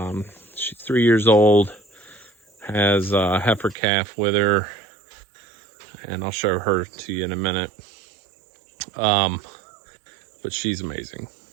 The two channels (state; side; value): drops out; left; at 3.8 s